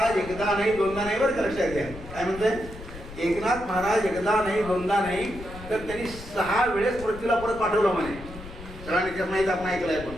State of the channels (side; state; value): left; noise; rumble, 14 dB below the sound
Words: एकदा नाही दोनदा नाही, बरं का लक्षात घ्या. काय म्हणतंय? एकनाथ महाराज एकदा नाही दोनदा नाही तर त्यांनी 6 वेळेस पृथ्वीला परत पाठवलं म्हणे. सगळ्यांनी त्यात माहीत आपण ऐकलंय, पण